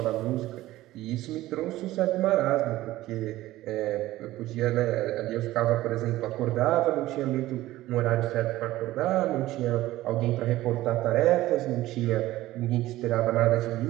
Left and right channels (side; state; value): left; quieter; 16.2 dB